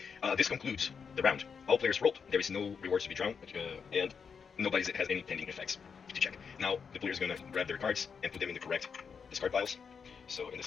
This concludes the round. All players rolled. There is no rewards to be drawn, and nobody has any pending effects to check. Now, the player is going to grab their cards and put them in the correct discard piles. So, in this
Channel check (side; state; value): right; quieter; 6.2 dB